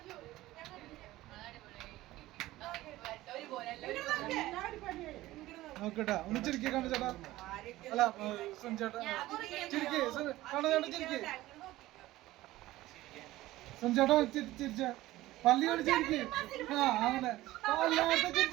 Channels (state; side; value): quieter; left; 16.9 dB